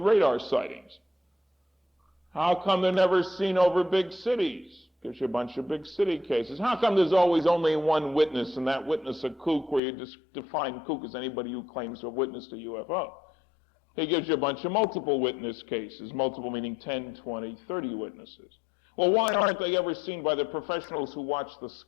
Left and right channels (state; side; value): drops out; right; at 9.8 s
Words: radar sightings. How come they're never seen over big cities? Gives you a bunch of big city cases. How come there's always only one witness, and that witness a kook, where you just define kook as anybody who claims to have witnessed a UFO? He gives you a bunch of multiple witness cases, multiple meaning 10, 20, 30 witnesses. Well, why aren't they ever seen by the professionals who watch the